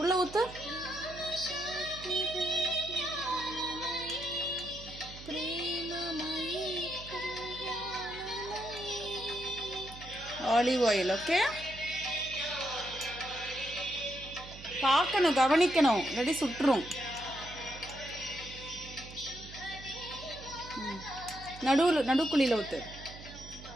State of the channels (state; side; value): noise; right; hum, 15 dB below the sound